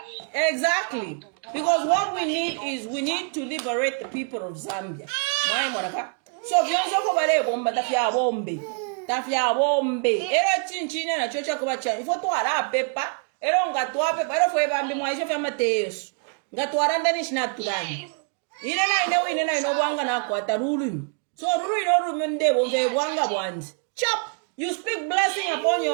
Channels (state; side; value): quieter; left; 39.9 dB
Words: Exactly. Because what we need is we need to liberate the people of Zambia. So vyonso ko bale bomba tafya bombe. Era chinchina na chocha ko bacha. Ifo to ara pepa. Era ngatwa pepa. Era foi bambi mwaisha fa Mateus. Ngatwa ndani snack tudani. Ine na ino bwanga na kwata rulu. So rulu ino mende bonge bwanga bwanzi. Chop. You speak blessing upon